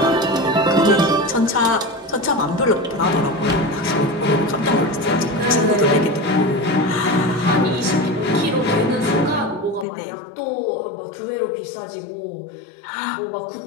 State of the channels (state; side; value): drops out; right; at 9.9 s